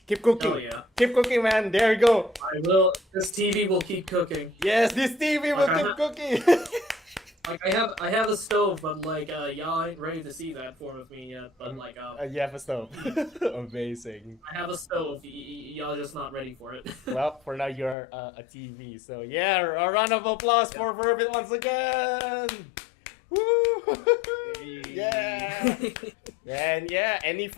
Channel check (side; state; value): right; drops out; at 17.9 s